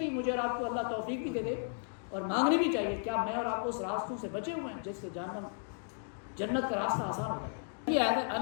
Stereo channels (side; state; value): right; silent; digital silence